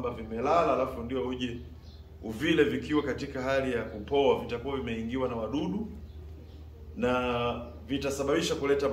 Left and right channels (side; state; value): both; identical; correlation 1.00